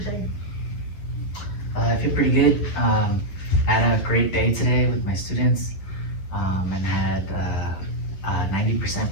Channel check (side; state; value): right; late; 11 ms